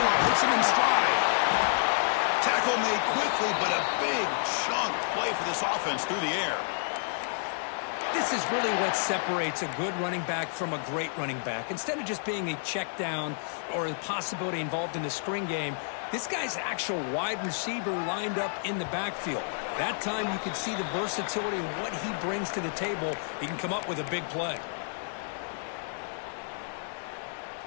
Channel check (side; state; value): right; silent; digital silence